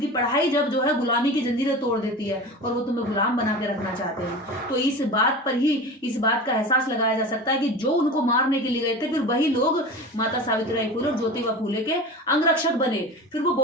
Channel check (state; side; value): normal; both; correlation 0.32